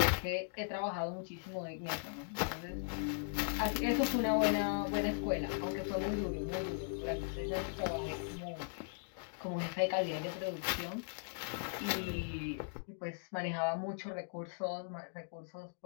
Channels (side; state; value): right; silent; digital silence